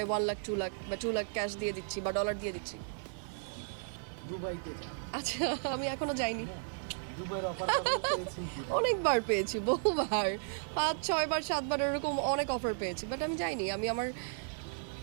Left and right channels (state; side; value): silent; left; digital silence